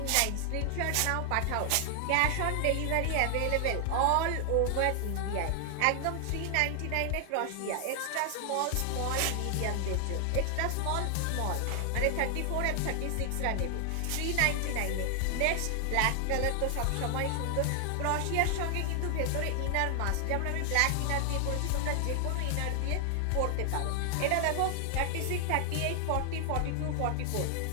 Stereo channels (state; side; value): different; both; correlation 0.00